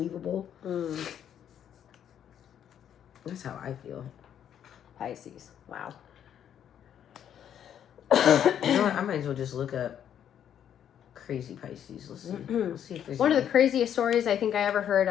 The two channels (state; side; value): quieter; right; 9.5 dB